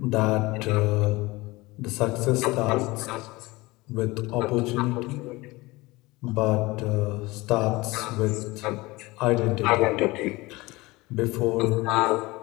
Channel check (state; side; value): quieter; right; 21.5 dB